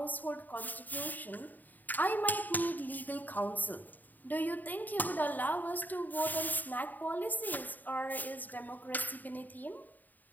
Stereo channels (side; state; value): right; late; 0.086 ms